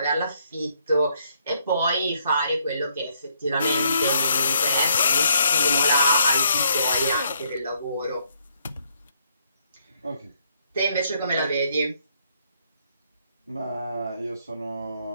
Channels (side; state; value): both; inverted; correlation -0.71